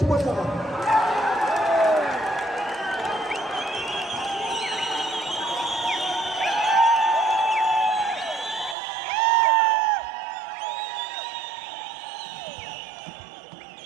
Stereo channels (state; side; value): drops out; left; at 8.8 s